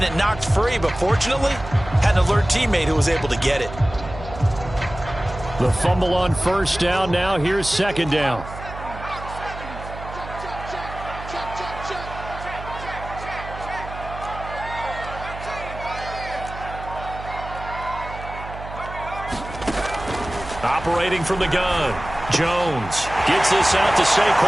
it knocked free, but fortunately, had an alert teammate who was able to get it. The fumble on first down. Now here's second down. Operating from the gun. Jones gets this out to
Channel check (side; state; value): right; noise; hum, 12 dB below the sound